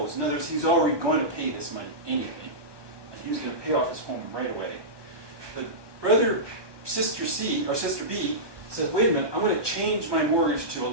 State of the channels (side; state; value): left; late; 1.2 ms